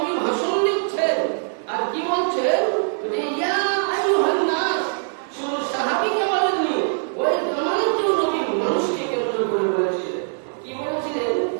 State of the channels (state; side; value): silent; left; 64 dB below the other